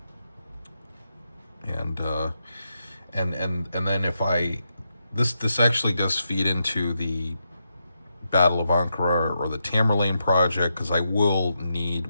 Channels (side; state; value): both; inverted; correlation -0.84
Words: and then if I this actually does feed into the Battle of Ankara or the Tamerlane project, because I will need